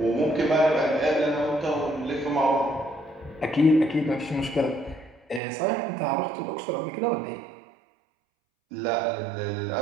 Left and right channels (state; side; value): drops out; left; at 5.4 s